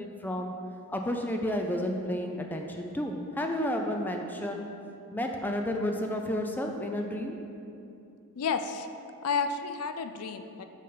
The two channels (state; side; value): normal; both; correlation 0.42